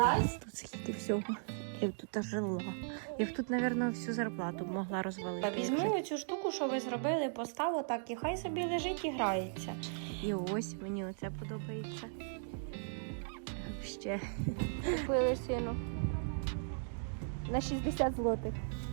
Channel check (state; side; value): silent; left; digital silence